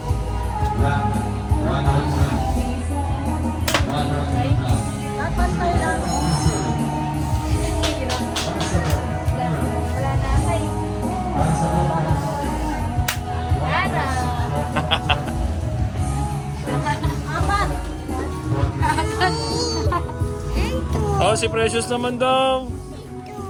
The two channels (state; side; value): identical; both; correlation 1.00